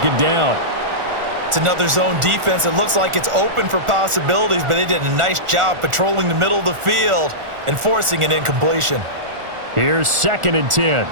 down. It's another zone defense. It looks like it's open for possibilities, but they did a nice job patrolling the middle of the field and forcing an incompletion. Here's 2nd and 10.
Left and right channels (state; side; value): late; left; 1.4 ms